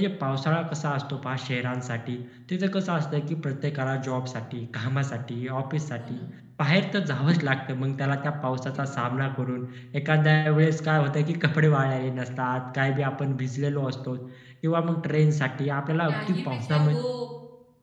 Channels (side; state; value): both; identical; correlation 1.00